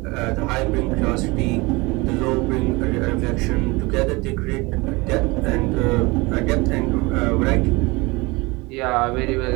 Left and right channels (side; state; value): left; quieter; 24.3 dB